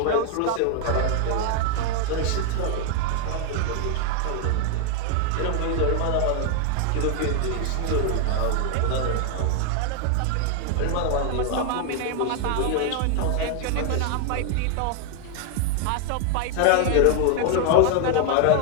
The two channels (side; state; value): both; different; correlation 0.00